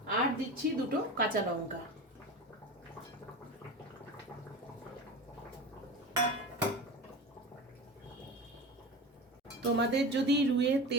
আর দিচ্ছি দুটো কাঁচা লঙ্কা। তোমাদের যদি রুইয়ের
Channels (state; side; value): normal; both; correlation 0.29